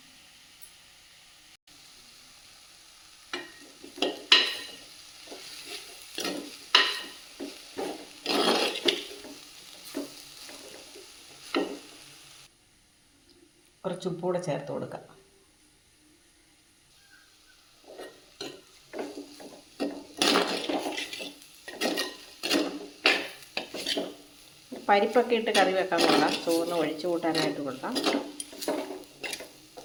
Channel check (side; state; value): both; identical; correlation 1.00